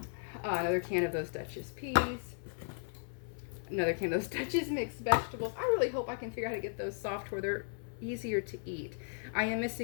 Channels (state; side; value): silent; right; 54 dB below the other